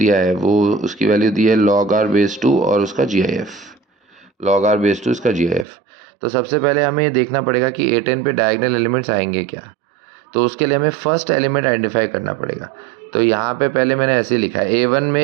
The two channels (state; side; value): drops out; left; at 5.7 s